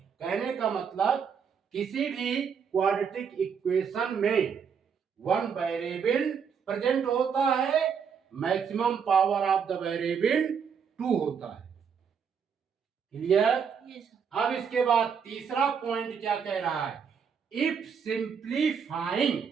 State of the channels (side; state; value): left; quieter; 6.8 dB